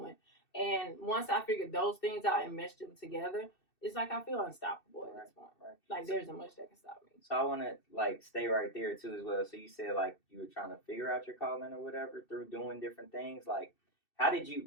And once I figured those things out and meshed them together, it's like I feel unstoppable at this point. Like, there isn't much that can stop me. So I want to, like, stay right there, too, as well. So you said, like, you were trying to figure out your calling or whatever through doing different things. Like, how did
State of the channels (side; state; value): right; late; 2.7 ms